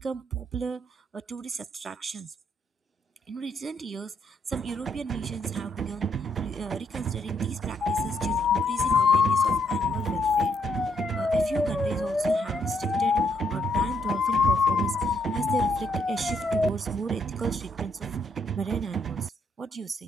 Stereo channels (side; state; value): both; normal; correlation 0.73